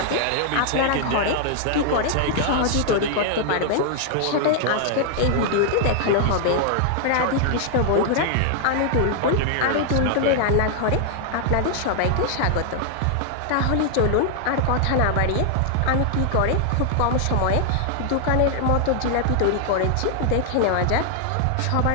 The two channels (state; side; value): different; both; correlation 0.00